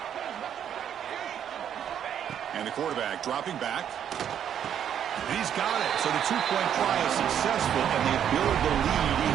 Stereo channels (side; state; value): left; quieter; 9.3 dB